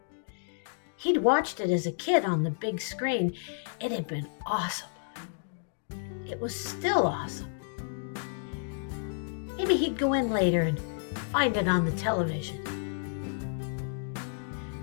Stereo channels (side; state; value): right; silent; digital silence